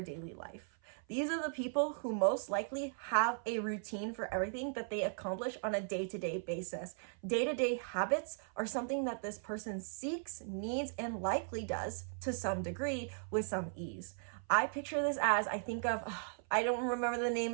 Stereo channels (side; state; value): left; silent; 53 dB below the other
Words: daily life. These are the people who most likely have a routine for everything that they accomplish on a day-to-day basis. Day-to-day habits are something that this person seeks, needs, and likely does to some degree with some ease. I picture this as, I think of, I don't remember the